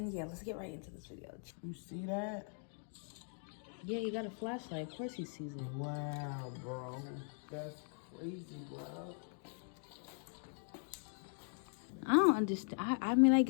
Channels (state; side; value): silent; right; 51 dB below the other